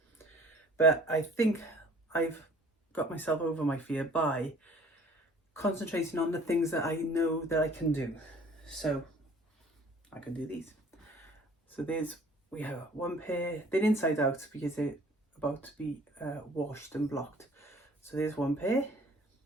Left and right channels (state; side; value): normal; both; correlation 0.53